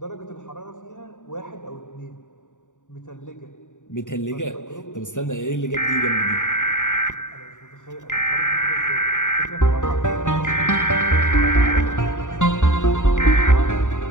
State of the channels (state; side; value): late; right; 0.86 ms